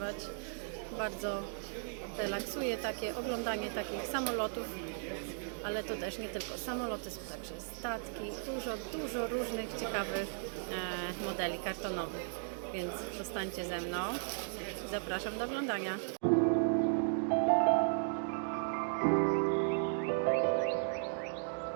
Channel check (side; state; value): left; silent; digital silence